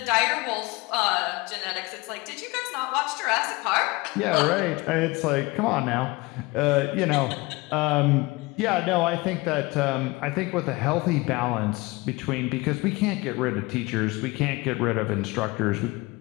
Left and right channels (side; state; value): right; quieter; 23.3 dB